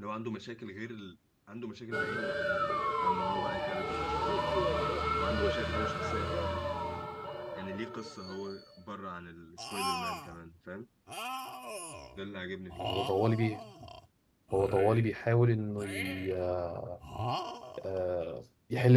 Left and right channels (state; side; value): identical; both; correlation 1.00